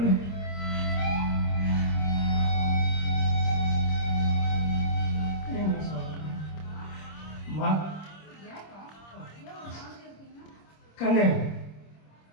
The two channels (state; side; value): late; right; 26 ms